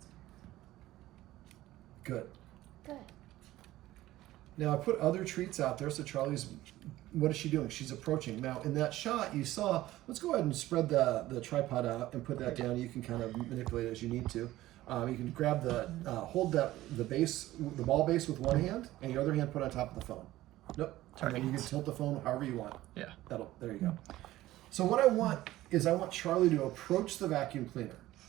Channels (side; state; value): left; quieter; 15.9 dB